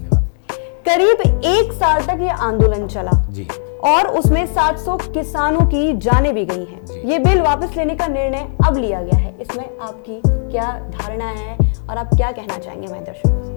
करीब 1 साल तक ये आंदोलन चला जी और उसमें 700 किसानों की जानें भी गई हैं। ये बिल वापस लेने का निर्णय अब लिया गया है, इसमें आपकी क्या धारणा है और आप क्या कहना चाहेंगे हमारे दर्शकों से?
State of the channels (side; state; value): right; silent; 64 dB below the other